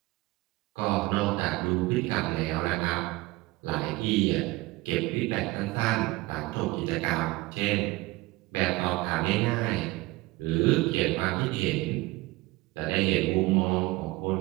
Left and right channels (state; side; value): quieter; left; 20.8 dB